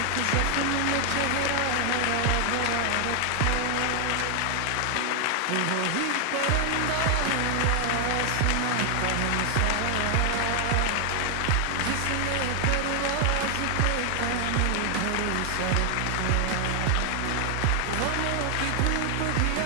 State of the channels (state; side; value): different; both; correlation 0.00